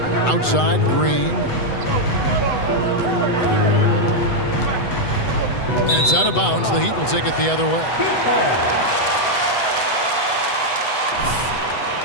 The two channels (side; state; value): right; late; 8.0 ms